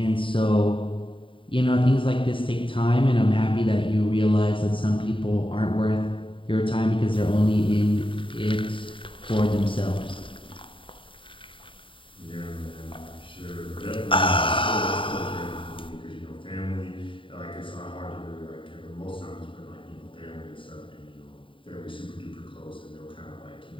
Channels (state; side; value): late; right; 0.25 ms